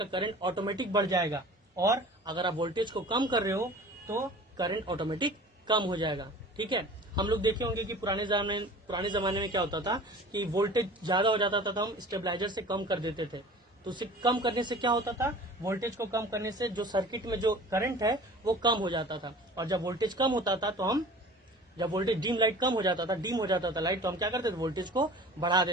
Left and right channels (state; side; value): normal; both; correlation 0.42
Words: करंट ऑटोमेटिक बढ़ जाएगा, और अगर आप वोल्टेज को कम कर रहे हो तो करंट ऑटोमेटिक कम हो जाएगा। ठीक है, हम लोग देखे होंगे कि पुराने जमाने में क्या होता था कि वोल्टेज ज्यादा हो जाता था तो हम स्टेबलाइजर से कम कर देते थे। तो उसे कम करने से क्या होता था, वोल्टेज को कम करने से जो सर्किट में जो करंट है वो कम हो जाता था, और जब वोल्टेज कम होता था तो जब वोल्टेज डीम हो जाता था लाइट, तो हम क्या करते थे, वोल्टेज को बढ़ा